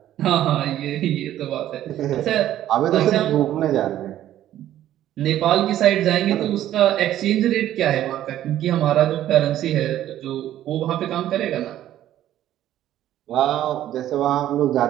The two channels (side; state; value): left; quieter; 12.5 dB